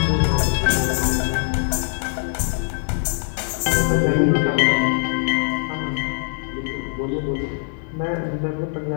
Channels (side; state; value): right; silent; digital silence